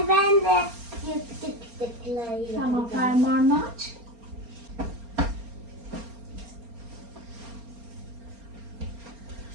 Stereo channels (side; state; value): left; late; 4.3 ms